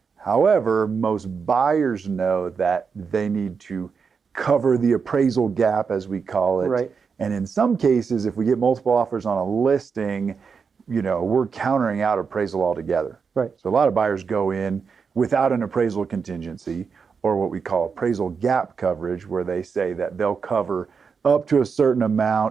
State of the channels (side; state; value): left; quieter; 5.8 dB